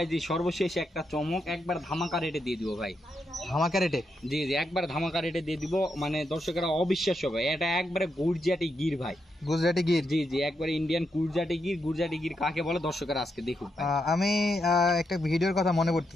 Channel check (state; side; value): normal; both; correlation 0.82